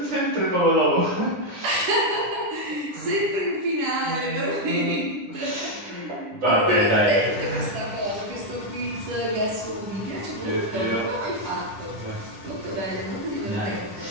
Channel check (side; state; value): left; late; 10 ms